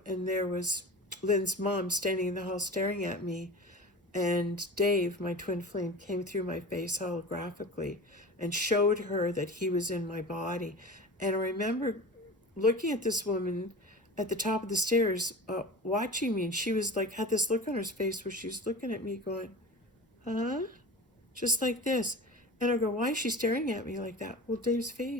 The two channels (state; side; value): normal; both; correlation 0.33